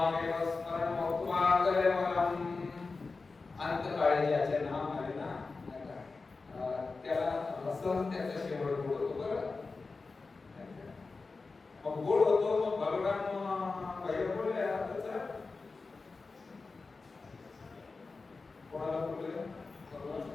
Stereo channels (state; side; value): quieter; right; 4.0 dB